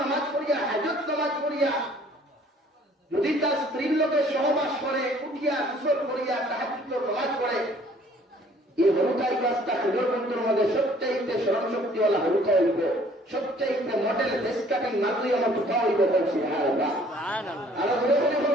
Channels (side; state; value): both; normal; correlation 0.57